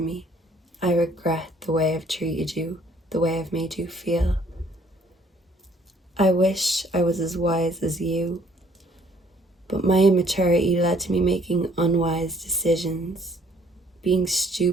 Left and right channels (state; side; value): normal; both; correlation 0.61